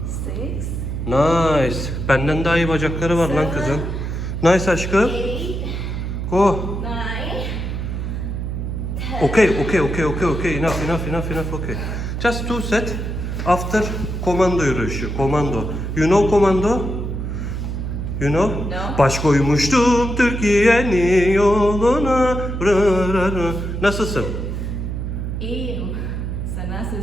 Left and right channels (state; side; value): noise; right; hum, 3 dB below the sound